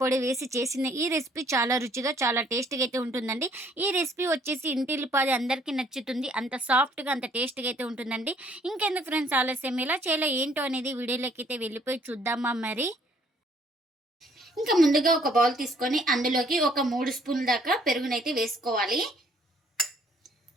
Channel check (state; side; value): normal; both; correlation 0.62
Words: వేసి చేసిన ఈ రెసిపీ చాలా రుచిగా, చాలా టేస్టీగా అయితే ఉంటుందండి. ఈ రెసిపీ వచ్చేసి ఇంటిల్లిపాది అందరికీ నచ్చుతుంది. అంత సాఫ్ట్‌గా, అంత టేస్టీగా అయితే ఉంటుందండి. ఇంకెందుకు ఫ్రెండ్స్ ఆలస్యం, ఎలా చేయాలో ఏంటో అనేది వీడియోలోకైతే వెళ్ళిపోయి చూద్దామా మరి? ఇంకా ముందుగా ఒక బౌల్ తీసుకొని అందులోకి ఒక 3 స్పూన్ల దాకా పెరుగునైతే వేసుకోవాలి.